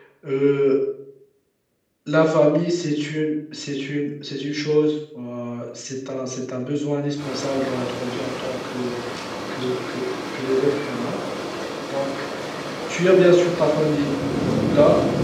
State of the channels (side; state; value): both; identical; correlation 1.00